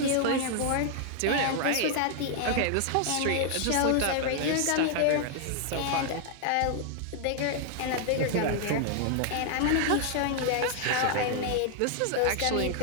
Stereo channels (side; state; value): both; different; correlation 0.00